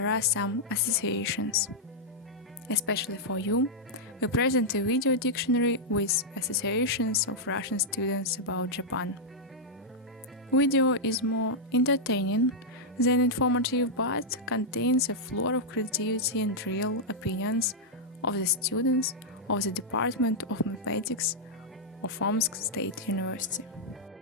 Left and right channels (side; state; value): both; normal; correlation -0.06